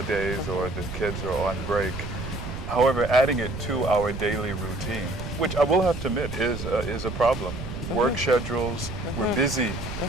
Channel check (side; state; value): right; noise; rumble, 7 dB below the sound